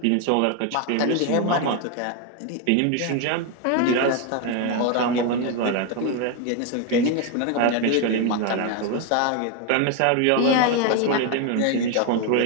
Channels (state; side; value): different; both; correlation 0.01